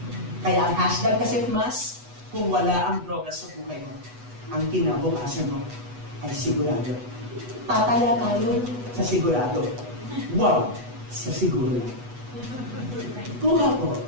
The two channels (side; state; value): left; late; 8.2 ms